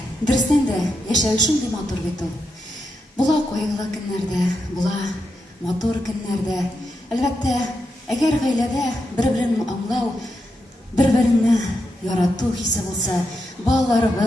Дұрыстан да яшәу шундый матур бит ул. Була кайгылы көннәрдә, була матур көннәрдә. Әлбәттә, әгәр гаиләдә бер-берен аңлау, бер-береңне ярату хисе булса,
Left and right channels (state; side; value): normal; both; correlation 0.85